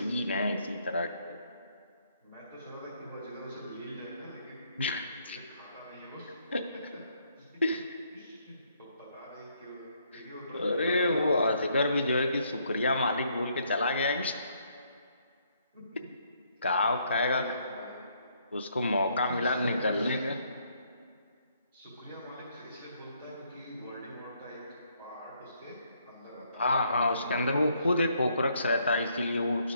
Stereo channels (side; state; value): both; inverted; correlation -0.71